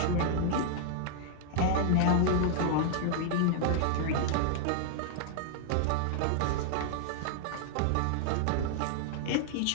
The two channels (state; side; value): different; both; correlation -0.01